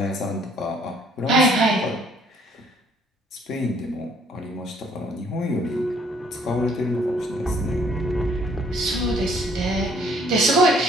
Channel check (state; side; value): normal; both; correlation 0.61